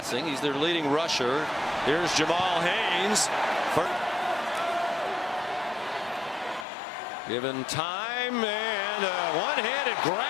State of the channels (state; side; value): drops out; right; at 6.7 s